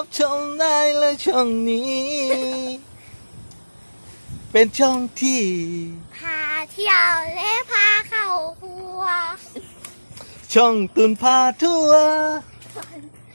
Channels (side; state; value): both; inverted; correlation -1.00